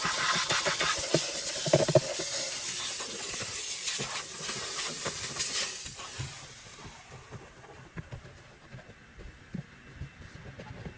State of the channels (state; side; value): identical; both; correlation 1.00